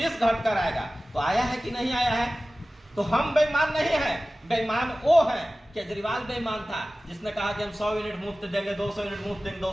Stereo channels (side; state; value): both; normal; correlation 0.97